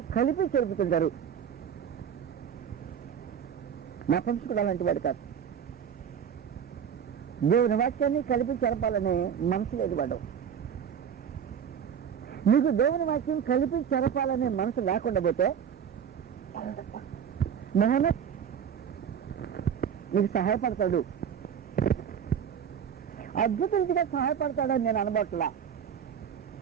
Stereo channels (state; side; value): quieter; left; 8.1 dB